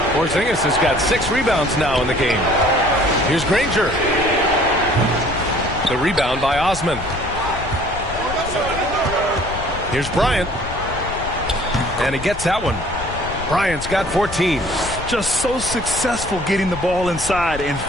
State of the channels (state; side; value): noise; left; rumble, 11 dB below the sound